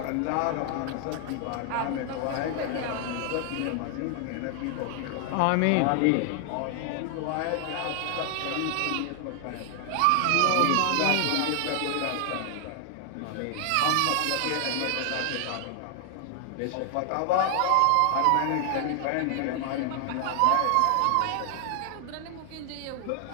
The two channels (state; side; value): different; both; correlation 0.00